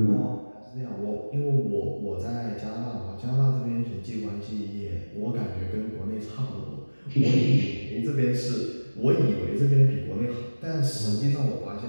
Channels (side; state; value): both; inverted; correlation -1.00